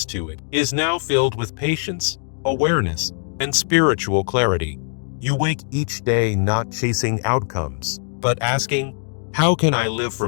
to it is now filled with patience, awareness, and spiritual clarity. You wake each day not chasing outcomes, but asking, how can I live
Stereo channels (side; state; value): right; silent; 65 dB below the other